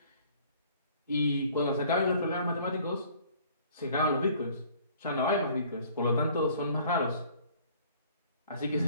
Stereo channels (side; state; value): both; inverted; correlation -0.55